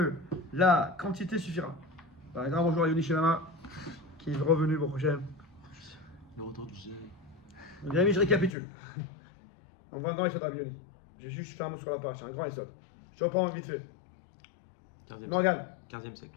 la quantité suffira. Un grand bonjour à Yoni Shemama, qui est revenu pour prochain. Le retour du G. Mes amis, je récapitule. On va un grand essai de Yoni. J'ai juste fait un mot sur la page, un grand essai. Je reprends vite fait. Morgane. 15e siècle.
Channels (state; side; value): drops out; right; at 8.6 s